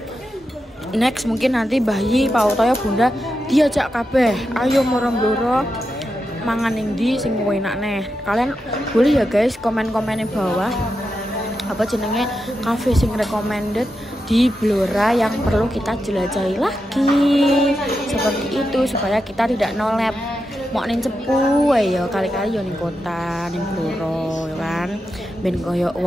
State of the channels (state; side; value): normal; both; correlation 0.88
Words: Next mungkin nanti bayi Pak Utoyo Bunda diajak kabeh. Ayo moro-moro mangan ning ndi sing enak neh. Kalian boleh ya guys komen-komen di bawah apa jenenge cafe sing recommended di Blora yang perlu kita jelajahi lagi. Seperti itu supaya kita tidak nolep mau ning cepu ya kali-kali yo ning kota ning Blora ya kan ben koyo